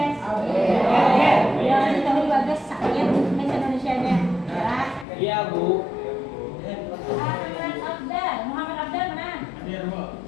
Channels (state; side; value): drops out; right; at 5.1 s